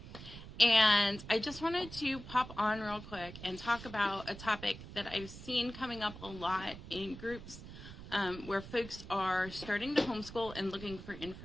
And I just wanted to pop on real quick and talk about a topic that I've seen coming up a lot in groups where folks are starting to homeschool and looking for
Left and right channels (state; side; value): noise; right; rumble, 13 dB below the sound